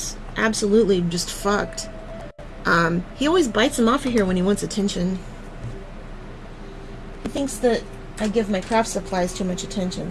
absolutely just fucked. He always bites them off of here when he wants attention. He thinks that I give my craft supplies too much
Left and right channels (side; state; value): both; identical; correlation 1.00